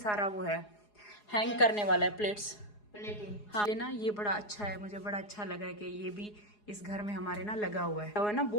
वो है हैंग करने वाला है प्लेट्स। हाँ ये ना ये बड़ा अच्छा है, मुझे बड़ा अच्छा लगा है कि ये भी इस घर में हमारे ना लगा हुआ है ना।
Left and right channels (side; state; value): right; late; 4.8 ms